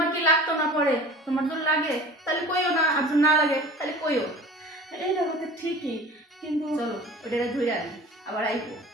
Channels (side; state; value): both; normal; correlation 0.41